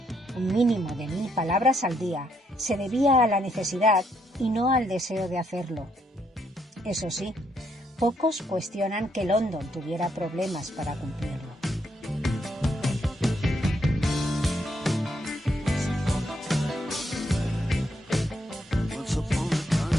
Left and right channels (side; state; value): both; normal; correlation 0.75